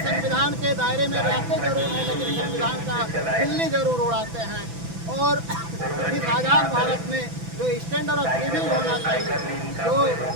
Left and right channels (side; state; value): left; late; 6.0 ms